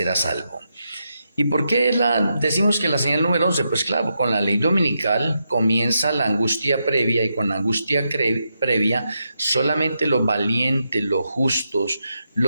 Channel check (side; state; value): both; inverted; correlation -0.84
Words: salvo. ¿Y por qué decimos que la señal número 11? Pues claro, con la ley dominical comienza la angustia previa y con la angustia previa solamente los valientes, los justos,